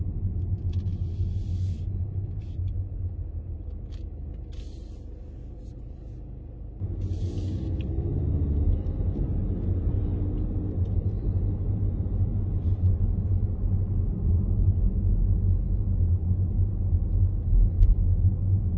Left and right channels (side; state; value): both; identical; correlation 1.00